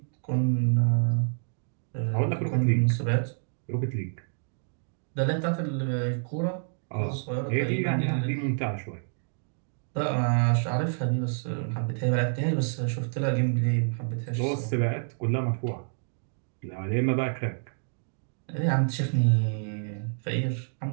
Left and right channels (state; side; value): silent; left; digital silence